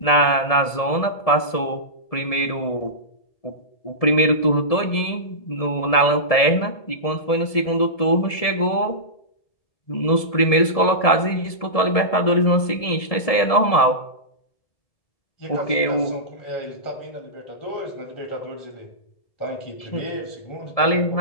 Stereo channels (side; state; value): right; late; 1.7 ms